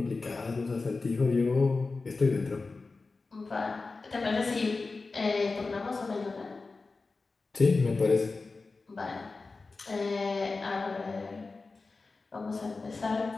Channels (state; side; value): quieter; right; 3.9 dB